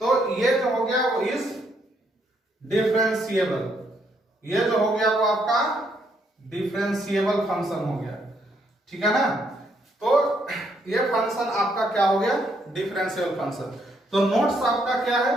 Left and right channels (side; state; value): both; normal; correlation 0.73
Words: तो ये जो हो गया वो इज डिफरेंशिएबल, ये जो हो गया वो आपका डिफरेंशिएबल फंक्शन हो गया, ठीक है ना। तो ये फंक्शन आपका क्या हो गया, डिफरेंशिएबल फंक्शन। तो नोट्स आपका क्या है